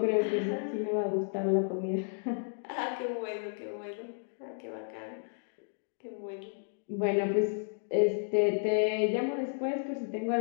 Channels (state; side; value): silent; right; digital silence